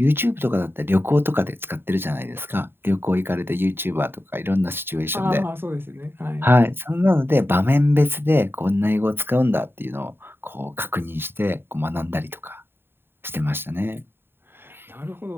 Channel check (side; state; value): left; late; 0.11 ms